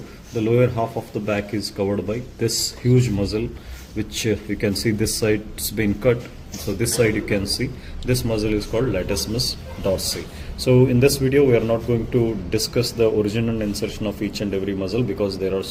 the lower half of the back is covered by this huge muscle, which you can see this side has been cut. So this side you can see this muscle is called latissimus dorsi. So in this video we are not going to discuss the origin and insertion of each and every muscle because there are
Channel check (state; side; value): identical; both; correlation 1.00